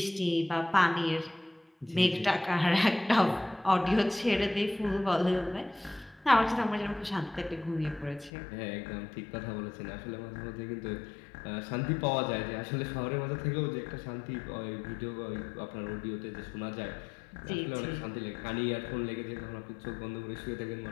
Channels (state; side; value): drops out; right; at 8.3 s